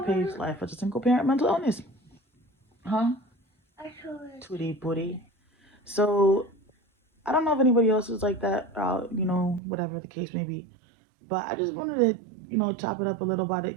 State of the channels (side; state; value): left; drops out; at 9.6 s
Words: page, Life as a Single Parent Mental Illness. Huh? Tootie booty. So, I don't know if anybody else is like that, whatever the case may be. But I just wanted to, chop it up a little about it